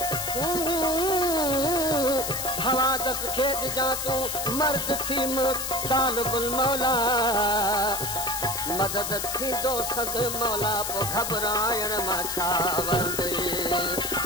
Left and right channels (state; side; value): noise; left; hiss, 3 dB below the sound